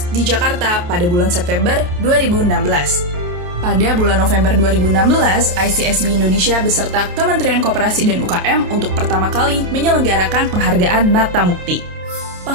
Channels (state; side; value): late; left; 28 ms